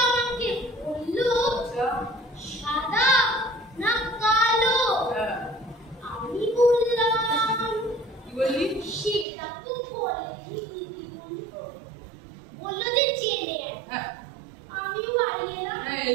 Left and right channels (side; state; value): left; drops out; at 9.2 s